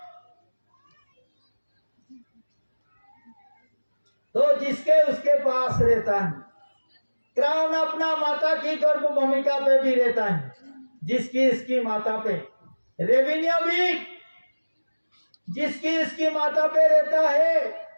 तो जिसके उसके पास रहता है, क्राउन अपना माता की गर्भ भूमिका पे भी रहता है, जिसकी इसकी माता पे। रेवेन्यू भी जिसकी इसकी माता पे रहता है,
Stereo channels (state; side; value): inverted; both; correlation -1.00